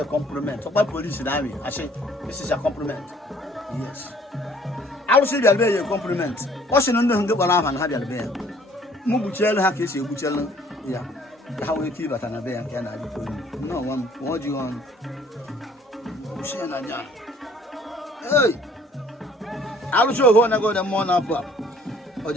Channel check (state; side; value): normal; both; correlation 0.58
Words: compliment. So my police in army, I say, this is a compliment. Yes. I will see the a compliment. What's in under the Balam and have your bear? Mubuchel Hakis, Buchel, yeah. How we keep at an bear can I do? No one, what do you want? Hey, I will show one ago the morning up. Or